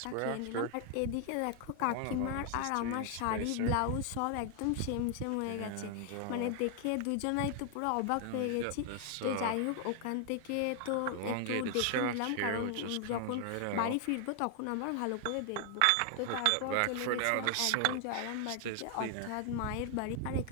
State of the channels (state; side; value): different; both; correlation 0.00